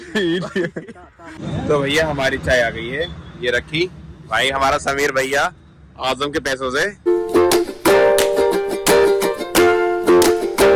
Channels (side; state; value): both; identical; correlation 1.00